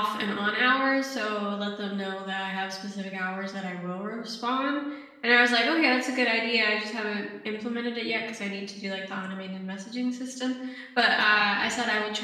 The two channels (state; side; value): identical; both; correlation 1.00